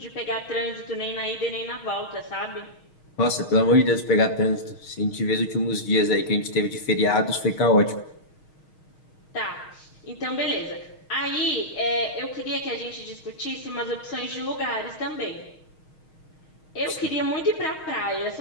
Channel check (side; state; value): right; late; 6.4 ms